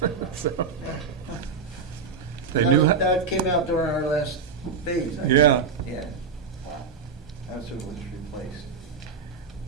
So they knew. That came out during our last phase. I think. Yeah. Yeah. Wow. That's what was replaced.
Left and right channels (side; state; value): left; quieter; 5.2 dB